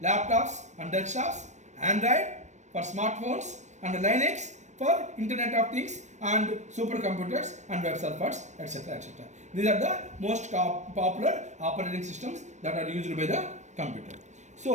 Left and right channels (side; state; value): left; late; 0.34 ms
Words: laptops and desktops, Android for smartphones and Linux for Internet of Things and supercomputers and web servers, etc. etc. These are the most popular operating systems that are used by the computer.